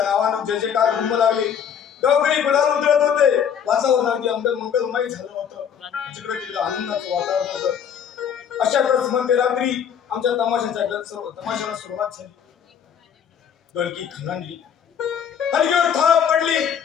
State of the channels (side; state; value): right; quieter; 8.1 dB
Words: नावानं जय जयकार घुमू लागले. गावकरी गुलाल उधळत होते. वातावरण अगदी मंगलमय झालं होतं. जिकडे तिकडे आनंदाचं वातावरण होतं. अशातच मध्यरात्री आमच्या तमाशाला सुरुवात झाली. ढोलकी खणांडली, हलकीवर थाप पडली